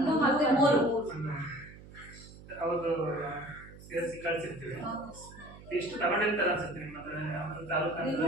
ಮತ್ತೆ 3 ಹೌದು ಸೇರಿಸಿ ಕಳಿಸಿರ್ತೀವಿ. ಎಷ್ಟು ತಗೊಂಡಿರ್ತಾರೆ ಅನ್ಸುತ್ತೆ ನಿಮ್ಮ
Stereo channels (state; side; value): noise; right; hum, 18 dB below the sound